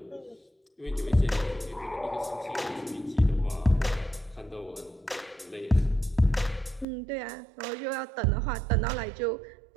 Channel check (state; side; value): drops out; left; at 6.9 s